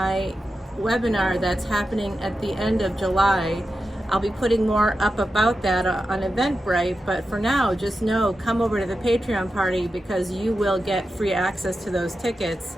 webinar that's happening at the end of July. I'll be putting more up about that on Eventbrite, but for now, just know, come over to the Patreon party because you will get free access to those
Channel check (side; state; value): both; normal; correlation 0.90